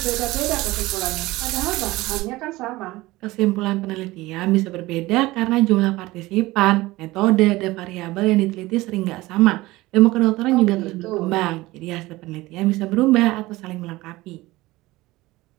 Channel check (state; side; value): quieter; left; 19.3 dB